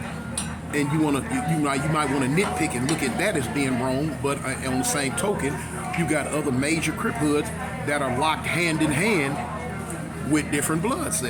And you might want to nitpick and look at that as being wrong, but on the same token, you got other major Crip hoods that are locked hand in hand with different blood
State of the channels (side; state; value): both; identical; correlation 1.00